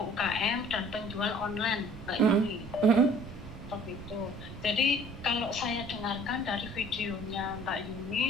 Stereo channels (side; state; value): right; noise; rumble, 13 dB below the sound